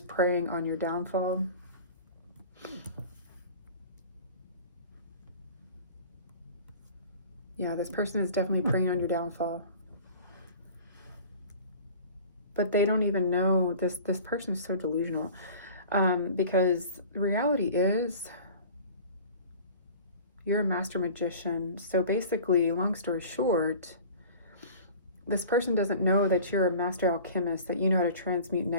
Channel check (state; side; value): inverted; both; correlation -0.42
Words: preying on your downfall. Yeah, this person is definitely preying on your downfall. But they don't even know, this person is so delusional. Because the reality is, you're a master magician. So basically, long story short, this person doesn't know that you're a master alchemist, that you know how to transmute